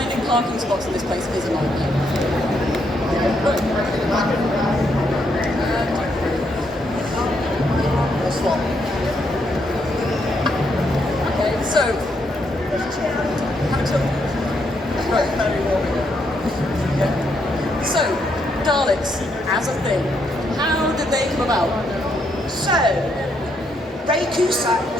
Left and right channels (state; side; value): normal; both; correlation 0.76